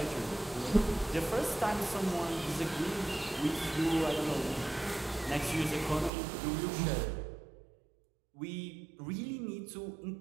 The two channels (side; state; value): left; drops out; at 6.1 s